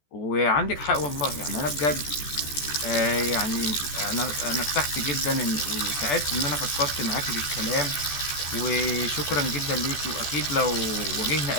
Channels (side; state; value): right; late; 14 ms